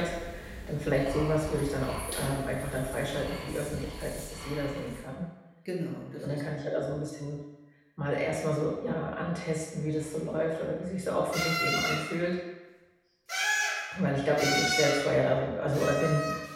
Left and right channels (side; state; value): both; identical; correlation 1.00